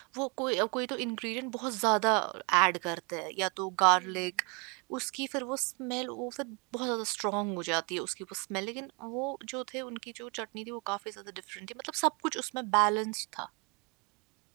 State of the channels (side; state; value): left; quieter; 32.1 dB